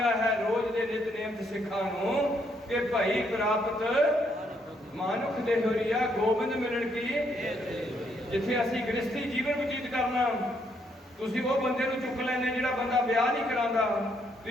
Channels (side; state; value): both; normal; correlation 0.73